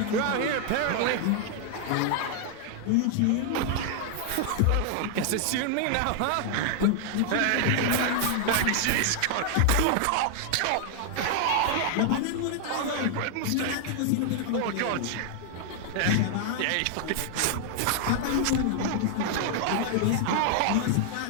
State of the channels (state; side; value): different; both; correlation 0.00